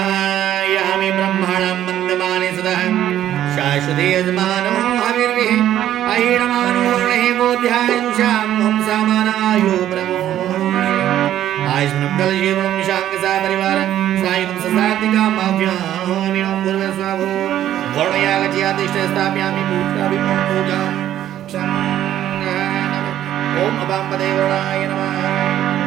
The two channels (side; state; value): left; quieter; 11.9 dB